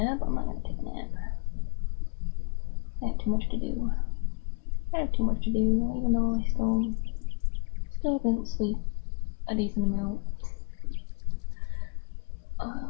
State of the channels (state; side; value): quieter; right; 33.3 dB